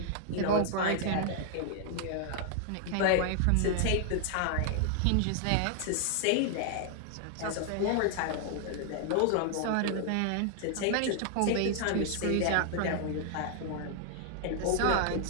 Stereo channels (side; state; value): both; different; correlation 0.00